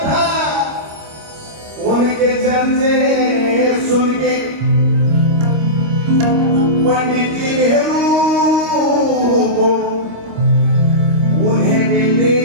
था। उनके चर्चे सुन के पंडित जी नेहरू को उन्हें मिलने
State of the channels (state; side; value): late; left; 26 ms